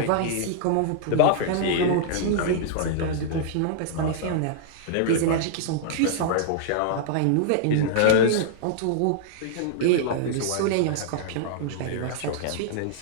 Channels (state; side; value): different; both; correlation -0.01